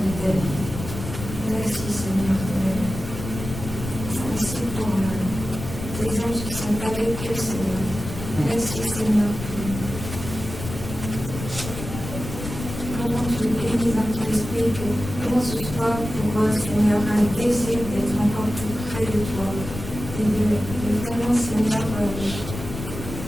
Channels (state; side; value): noise; left; rumble, 8 dB below the sound